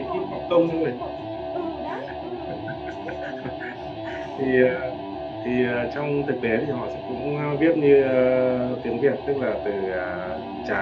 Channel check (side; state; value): both; identical; correlation 1.00